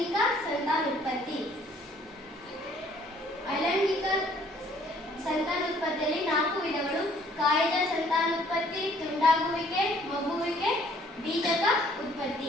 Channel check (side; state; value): both; normal; correlation 0.60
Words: ಸಂತಾನೋತ್ಪತ್ತಿ. ಅಲೈಂಗಿಕ ಸಂತಾನೋತ್ಪತ್ತಿಯಲ್ಲಿ 4 ವಿಧಗಳು: ಕಾಯಜ ಸಂತಾನೋತ್ಪತ್ತಿ, ತುಂಡಾಗುವಿಕೆ, ಮಗುವಿಕೆ, ಬೀಜಕ